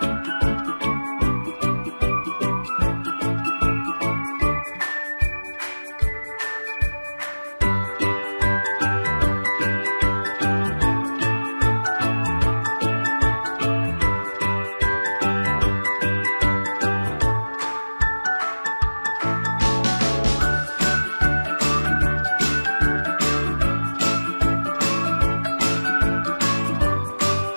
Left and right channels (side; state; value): both; inverted; correlation -1.00